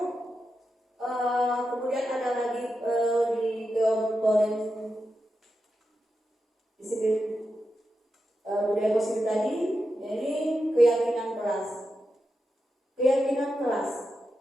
kelas. Keyakinan kelas.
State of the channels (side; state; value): both; normal; correlation 0.88